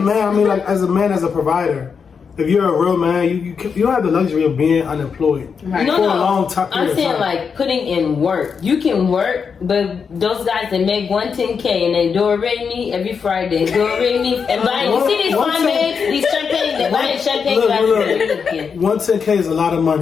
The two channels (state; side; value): quieter; right; 6.1 dB